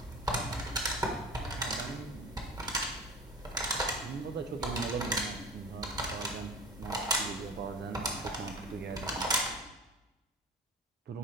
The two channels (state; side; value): normal; both; correlation 0.34